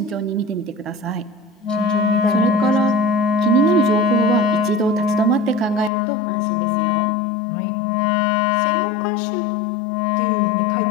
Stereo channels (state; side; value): drops out; right; at 5.9 s